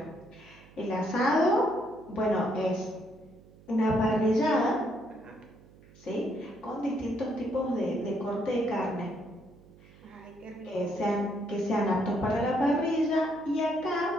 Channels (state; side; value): noise; right; hum, 24 dB below the sound